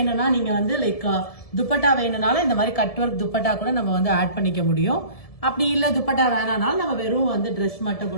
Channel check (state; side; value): late; right; 1.7 ms